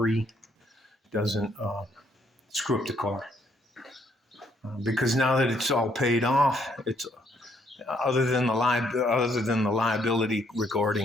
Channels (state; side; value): normal; both; correlation 0.70